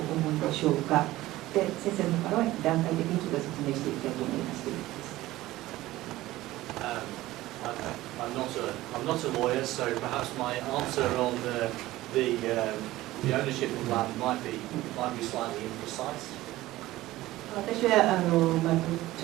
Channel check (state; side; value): quieter; left; 16.9 dB